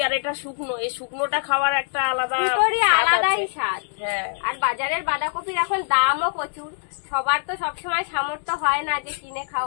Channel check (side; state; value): right; silent; 63 dB below the other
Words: আর এটা শুকনো, এই শুকনোটা খাওয়ার একটা আলাদাই স্বাদ। হ্যাঁ, আর বাজারের বাঁধাকপির এখন দামও প্রচুর, সবার তো সবসময় সামর্থ্য হয় না যে কিনে